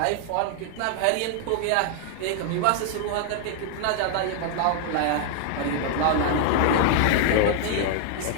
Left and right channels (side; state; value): both; different; correlation 0.00